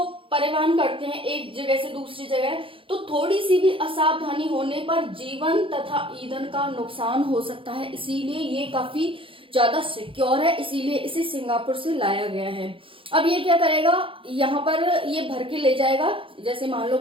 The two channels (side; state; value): left; late; 0.25 ms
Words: परिवहन करते हैं एक जगह से दूसरी जगह, तो थोड़ी सी भी असावधानी होने पर जीवन तथा ईंधन का नुकसान हो सकता है, इसीलिए ये काफी ज्यादा सिक्योर है, इसीलिए इसे सिंगापुर से लाया गया है। अब ये क्या करेगा, यहाँ पर ये भर के ले जाएगा, जैसे मान लो